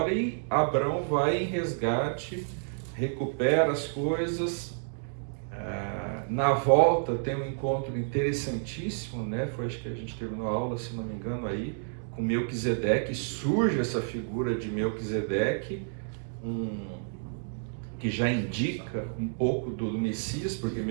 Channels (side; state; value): left; silent; digital silence